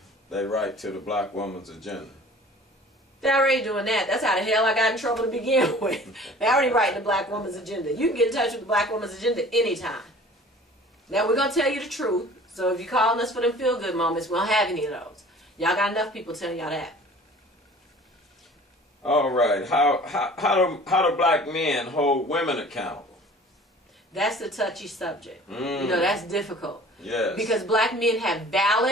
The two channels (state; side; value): normal; both; correlation 0.47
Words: they write to the Black Woman's Agenda? They're already doing that. That's how the hell I got in trouble to begin with. They're already writing the Black Woman's Agenda. You can get in touch with the Black Woman's Agenda anytime. Now, we're going to tell you the truth. So if you're calling us for them feel-good moments, we don't have any of those. Y'all got enough people telling y'all that. All right. How do black men hold women accountable? That's the touchy subject. You know, that's difficult. Yes. Because black men have